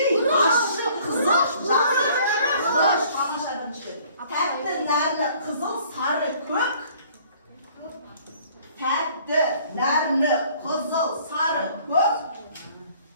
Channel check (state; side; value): inverted; both; correlation -0.56